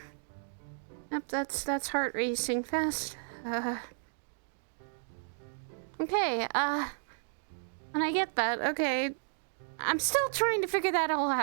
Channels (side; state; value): left; silent; digital silence